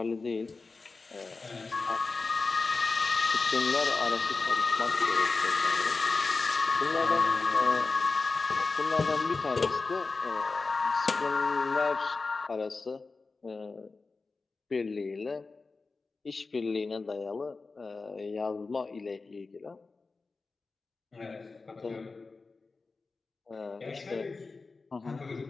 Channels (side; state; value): right; quieter; 4.0 dB